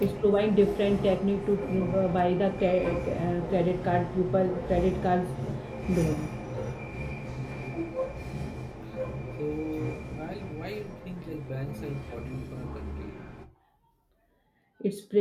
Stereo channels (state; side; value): identical; both; correlation 1.00